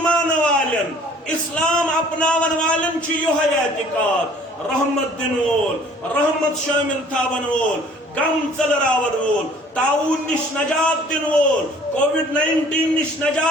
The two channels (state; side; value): normal; both; correlation 0.54